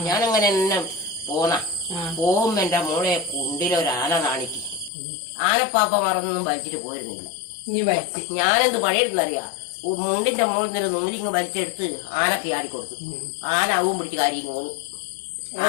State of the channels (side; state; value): right; drops out; at 4.9 s